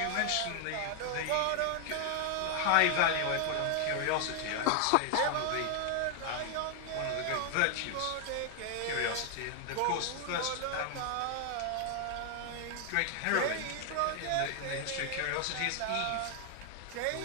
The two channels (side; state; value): both; different; correlation 0.00